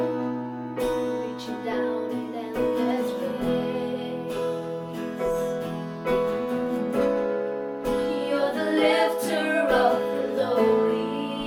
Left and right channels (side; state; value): both; identical; correlation 1.00